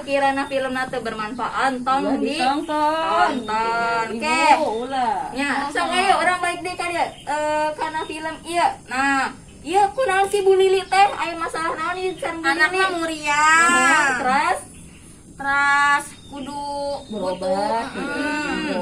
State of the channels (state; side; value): identical; both; correlation 1.00